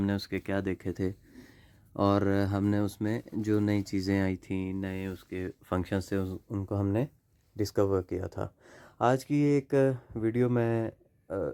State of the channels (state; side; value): identical; both; correlation 1.00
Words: उसके क्या देखे थे और हमने उसमें जो नई चीज़ें आई थी, नए उसके फंक्शंस थे, उनको हमने डिस्कवर किया था। आज की एक वीडियो मैं